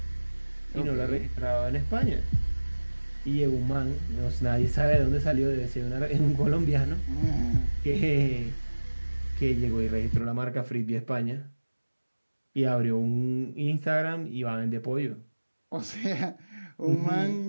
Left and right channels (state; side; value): inverted; both; correlation -1.00